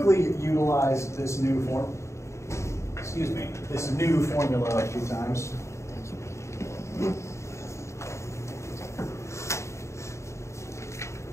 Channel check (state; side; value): late; right; 0.14 ms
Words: utilize this new this new formula a few times.